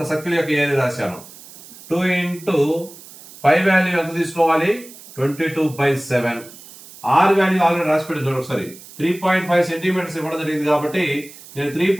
సర్కిల్ యొక్క ఏరియా రాశాను. 2 ఇంటూ పై వాల్యూ ఎంత తీసుకోవాలి? 22/7. R వాల్యూ ఆల్రెడీ రాసి పెట్టింది ఒకసారి. 3.5 సెంటీమీటర్స్ ఇవ్వడం జరిగింది కాబట్టి నేను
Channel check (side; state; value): right; noise; hiss, 19 dB below the sound